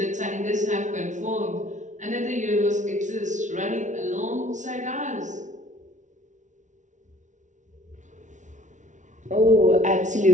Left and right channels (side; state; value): left; late; 0.36 ms